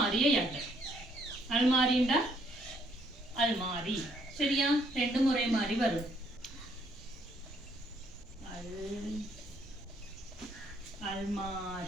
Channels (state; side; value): normal; both; correlation 0.68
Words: யாட்ட. அல்மாரிண்டா அல்மாரி. சரியா? ரெண்டு முறை மாறி வரும்.